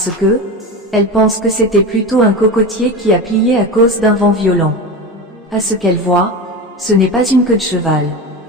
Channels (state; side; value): normal; both; correlation 0.25